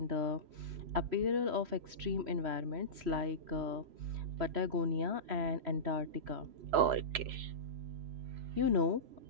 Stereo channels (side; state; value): left; late; 3.0 ms